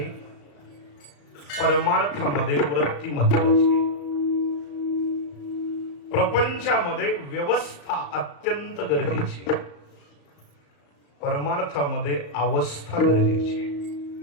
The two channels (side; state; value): right; late; 35 ms